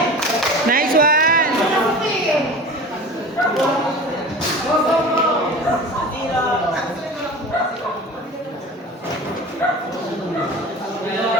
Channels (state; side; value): normal; both; correlation 0.36